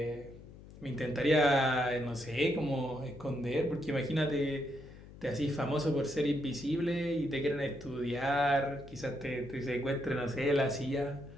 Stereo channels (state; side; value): noise; left; hum, 18 dB below the sound